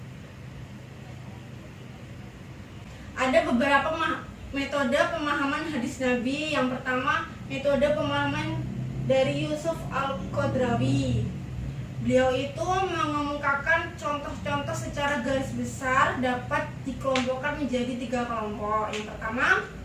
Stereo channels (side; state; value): both; identical; correlation 1.00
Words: Ada beberapa metode pemahaman hadis Nabi. Yang pertama, metode pemahaman dari Yusuf Al-Qadrawi. Beliau itu mengemukakan contoh-contoh secara garis besar dapat dikelompokkan menjadi 3 kelompok. Yang pertama,